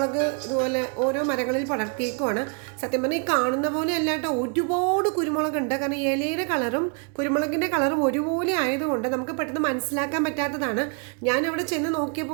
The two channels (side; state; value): left; quieter; 39.4 dB